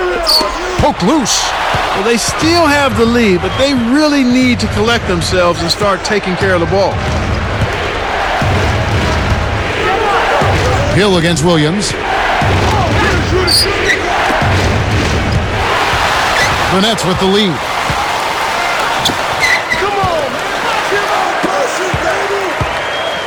Poke loose. Well, they still have the lead, but they really need to collect themselves and start taking care of the ball. Hill against Williams. The Nets with the lead.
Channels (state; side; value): identical; both; correlation 1.00